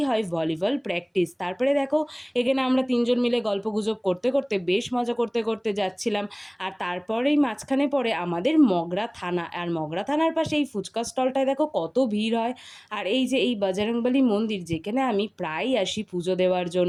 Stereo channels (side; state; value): both; identical; correlation 1.00